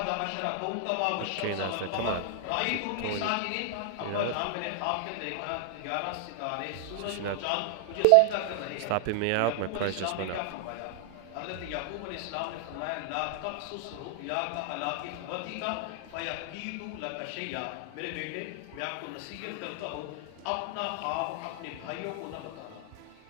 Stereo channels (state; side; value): different; both; correlation -0.01